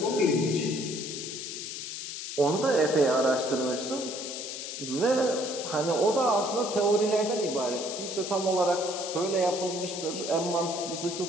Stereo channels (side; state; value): left; noise; hiss, 7 dB below the sound